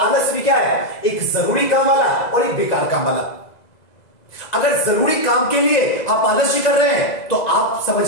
भी क्या है, एक जरूरी काम वाला और एक बेकार काम वाला। अगर जरूरी काम के लिए आप आलस्य कर रहे हैं तो आप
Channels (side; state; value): right; late; 2.0 ms